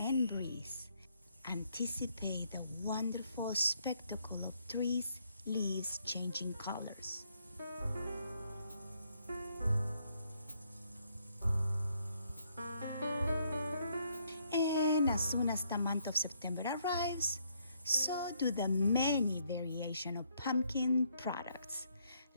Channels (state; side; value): inverted; both; correlation -0.71